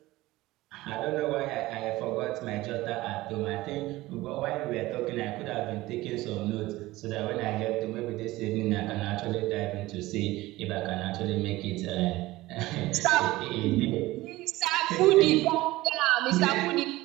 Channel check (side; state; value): left; quieter; 18.4 dB